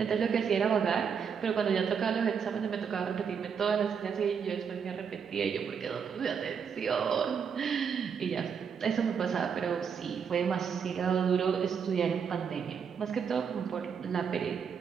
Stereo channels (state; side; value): quieter; left; 6.8 dB